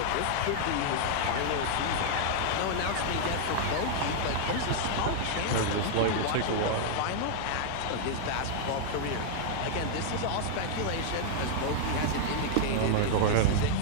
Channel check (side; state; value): both; different; correlation -0.01